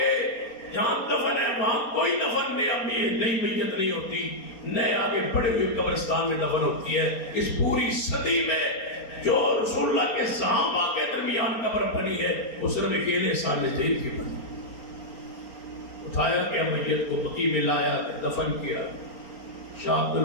جہاں دفن ہے وہاں کوئی دفن نئی میت نہیں ہوتی، نئے آگے بڑے ہوئے قبرستان میں دفن ہوتی ہے. اس پوری صدی میں جو رسول اللہ کے صحابہ کے درمیان قبر بنی ہے وہ صرف اکیلے سال جیل کی بنی. اٹھایا گیا میت کو بقیع میں لایا دفن کیا. شاہ عبد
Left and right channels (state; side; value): late; right; 4.3 ms